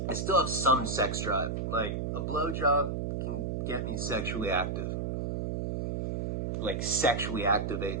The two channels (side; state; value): right; noise; hum, 2 dB below the sound